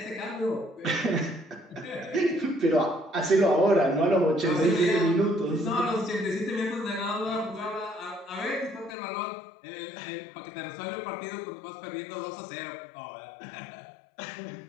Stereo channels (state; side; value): drops out; right; at 9.0 s